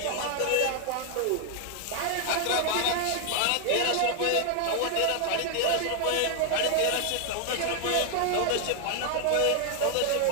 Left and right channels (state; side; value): different; both; correlation 0.00